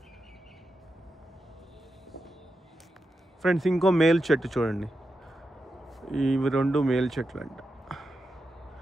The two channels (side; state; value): both; normal; correlation 0.88